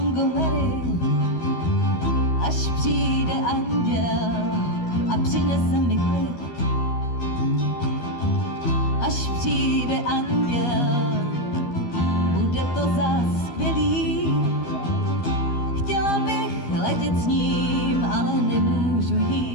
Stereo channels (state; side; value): late; right; 13 ms